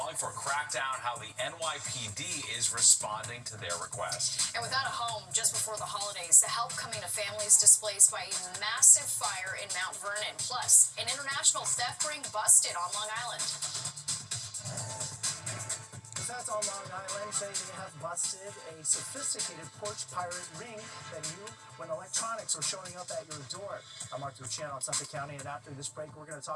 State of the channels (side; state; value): both; identical; correlation 1.00